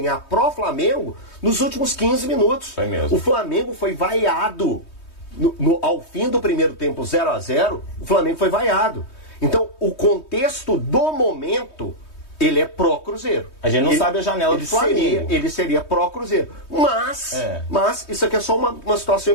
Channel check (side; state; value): right; late; 3.2 ms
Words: pro Flamengo nos últimos 15 minutos. Foi mesmo. O Flamengo foi vaiado. Ao fim do primeiro tempo 0 a 0, o Flamengo foi vaiado. Então, o contexto do momento, ele é pró-Cruzeiro. A gente não sabe a janela do Flamengo. Ele seria pró-Cruzeiro. Mas isso aqui é só uma situação